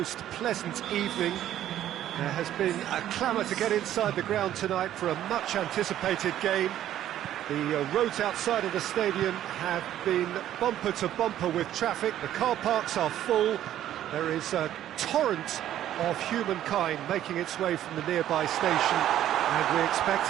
pleasant evening. There has been a clamour to get inside the ground tonight for a much anticipated game. The roads outside of the stadium have been bumper to bumper with traffic. The car parks are full. There is a torrent of humankind making its way from the nearby station, and we expect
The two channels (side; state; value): left; quieter; 12.0 dB